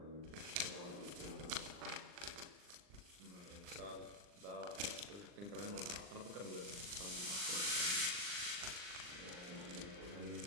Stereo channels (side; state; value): left; late; 39 ms